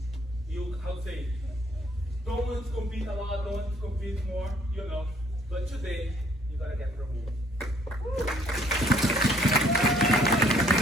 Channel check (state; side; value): normal; both; correlation 0.62